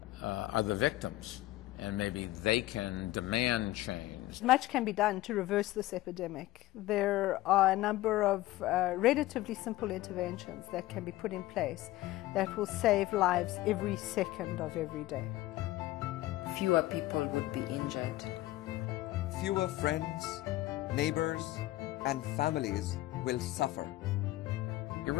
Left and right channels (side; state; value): right; quieter; 16.9 dB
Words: are the victims, and maybe they can demand change. Much can be done to reverse this epidemic. There are a number of relatively simple interventions that can be put in place that will save lives every second of every day. Fewer people would be injured. Fewer friends, neighbors, and families will suffer. It